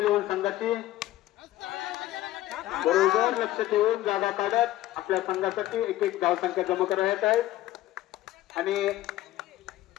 संघाची. बरोबर लक्ष ठेवून जागा काढत आपल्या संघासाठी एक धाव संख्या जमा करण्यात आहेत आणि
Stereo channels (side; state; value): right; quieter; 14.9 dB